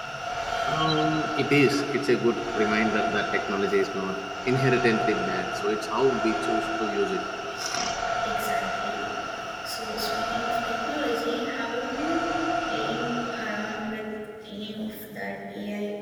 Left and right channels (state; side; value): identical; both; correlation 1.00